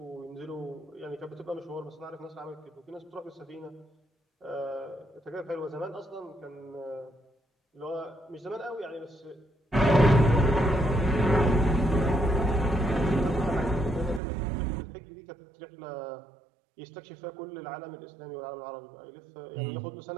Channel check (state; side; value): drops out; left; at 14.2 s